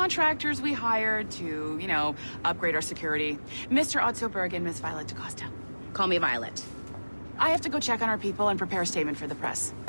we hired to, you know, upgrade our security. Mr. Ottoberg and Miss Violet DaCosta. Call me Violet. I have to go check on our people and prepare a statement for the press.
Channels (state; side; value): inverted; both; correlation -1.00